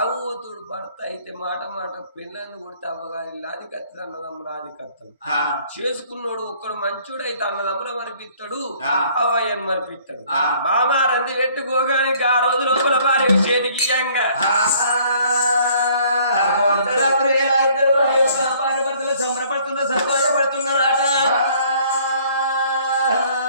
భర్త అయితే మాట మాట పిల్లల్ని కొడితే అవ్వగారి ఇల్లు అది కత్తి అన్నదమ్ములు అది కత్తడు చేసుకున్నాడు ఒక్కడు మంచోడైతే అన్నదమ్ముల మరిపిస్తాడు అవ్వయ్యను మరిపిస్తాడు మామా రంది పెట్టుకోగానికి ఆ రోజు లోపల భార్య చేతికి ఇయ్యంగా అర్ధరాత్రి వేళ ఇద్దరు భార్య భర్తలు సంబరపడుతున్న సంతోషపడుతున్నారట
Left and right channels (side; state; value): both; inverted; correlation -0.58